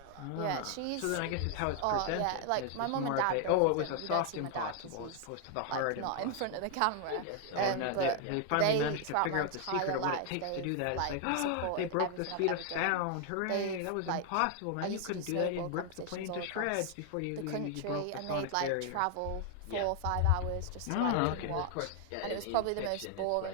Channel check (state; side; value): different; both; correlation 0.00